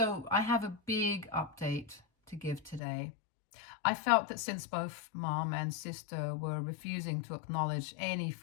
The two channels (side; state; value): right; drops out; at 2.8 s